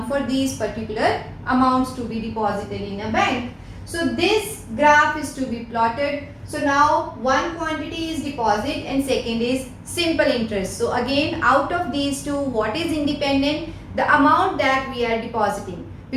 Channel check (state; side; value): identical; both; correlation 1.00